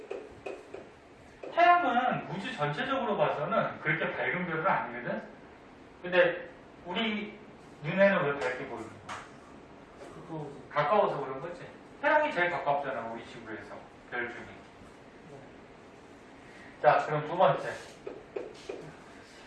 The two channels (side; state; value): both; identical; correlation 1.00